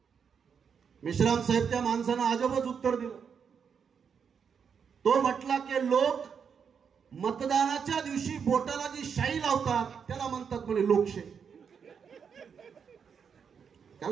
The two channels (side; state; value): left; quieter; 6.8 dB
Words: मेश्राम साहेब त्या माणसानं अजबच उत्तर दिलं. तो म्हटला की लोक मतदानाच्या दिवशी बोटाला जी शाई लावतात त्याला म्हणतात म्हणे लोकशाही.